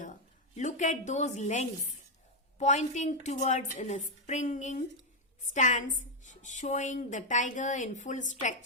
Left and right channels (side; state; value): both; normal; correlation 0.02